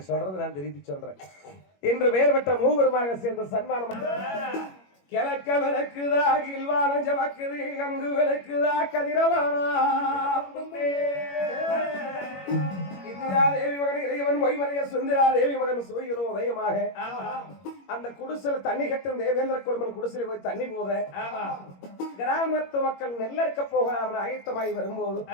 சொல்றது நான் திருப்பி சொல்றேன். இன்று வேறு பெற்ற மூவருமாக சேர்ந்த சன்மானம். கிழக்க விளக்குதா கில்வானம் ஜவக்குது, அங்கு விளக்குதா கதிரவானா தேவி மகன் இறைவன் மொய்மனைய சுந்தரா தேவி மகன் சூரியனோ உதயமாக அந்த குடிசையில தண்ணி கட்டும் தேவேந்திர குடும்பம் குடிசையில போய் தண்ணி போத கிராமத்து மக்கள் நெல்லறுக்க போக அவன் ஆயத்தமாகி வரும்போது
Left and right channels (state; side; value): late; right; 21 ms